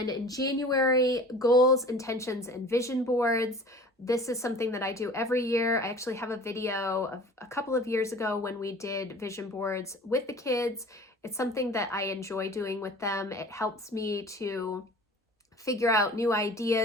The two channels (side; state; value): both; normal; correlation 0.43